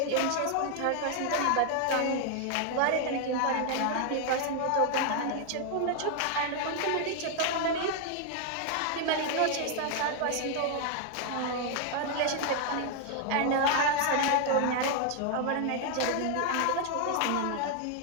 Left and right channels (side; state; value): both; different; correlation 0.00